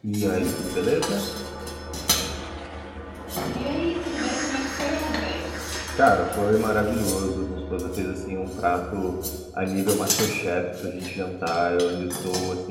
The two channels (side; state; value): both; identical; correlation 1.00